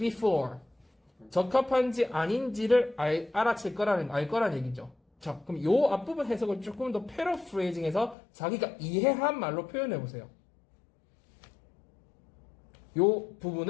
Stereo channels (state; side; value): drops out; right; at 8.2 s